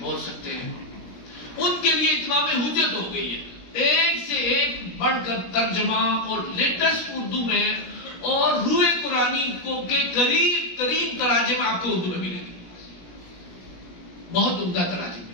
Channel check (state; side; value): late; right; 17 ms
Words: سکتے ہیں، ان کے لیے اتمام حجت ہو گئی ہے. ایک سے ایک بڑھ کر ترجمہ اور لیٹسٹ اردو میں اور روح قرآنی کو کے قریب ترین تراجم آپ کو اردو میں ملیں گے. بہت عمدہ تراجم